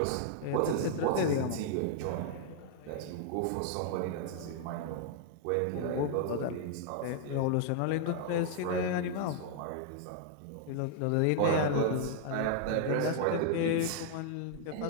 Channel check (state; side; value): different; both; correlation -0.01